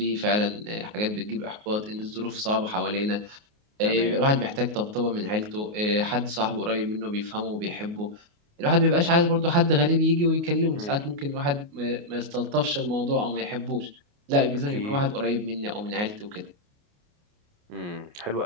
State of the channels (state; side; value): late; left; 28 ms